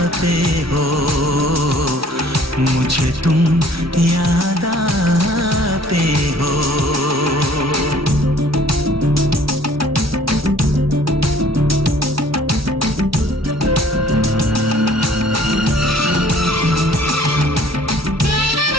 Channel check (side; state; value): both; normal; correlation 0.55